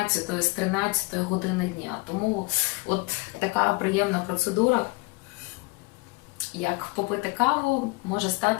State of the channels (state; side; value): quieter; right; 25.4 dB